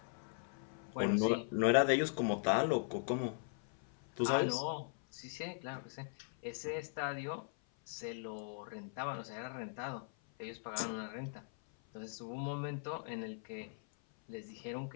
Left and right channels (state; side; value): silent; right; 51 dB below the other